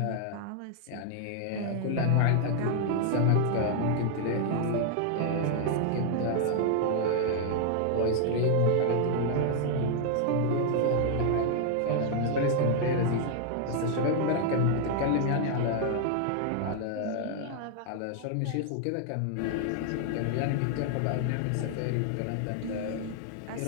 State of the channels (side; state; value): both; different; correlation 0.00